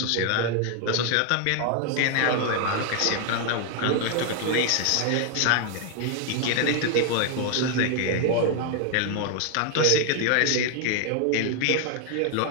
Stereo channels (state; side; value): different; both; correlation 0.00